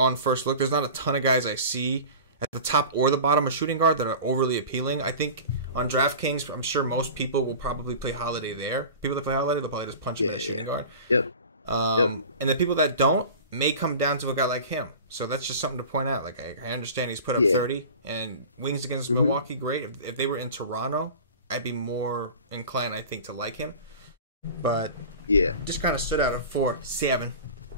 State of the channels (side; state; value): both; inverted; correlation -0.37